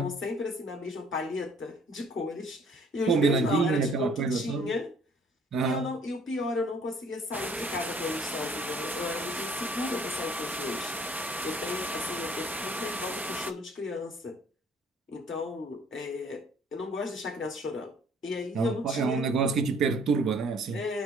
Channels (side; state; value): both; normal; correlation 0.58